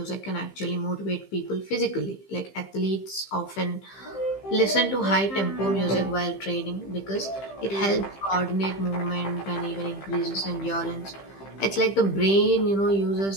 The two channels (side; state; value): right; late; 15 ms